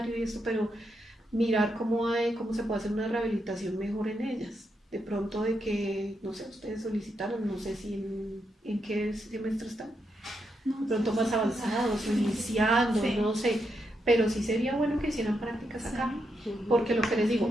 y esto, pero mirar cómo se puede hacer una rehabilitación mejor en ellas. De pronto de que, no sé, ustedes solicitaron, no sé si en qué semestre están, de pronto más avanzados, iniciando, Sí. no sé, pero sí sería bueno que hicieran prácticas acá, porque lo que les digo,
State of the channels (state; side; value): normal; both; correlation 0.82